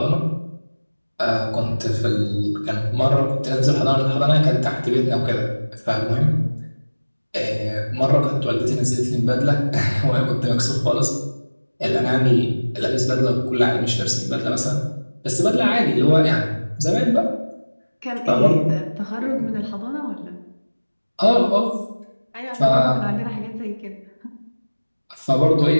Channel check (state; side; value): inverted; both; correlation -1.00